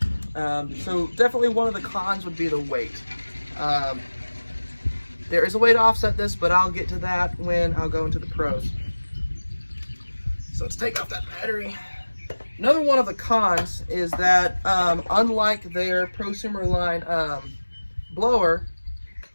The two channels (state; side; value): inverted; both; correlation -1.00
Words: So definitely one of the cons would be the weight. There is a way to offset this, but I'll get to that when I'll go into the pros. So let's take off that battery. Another one of the cons is that unlike their prosumer line blower,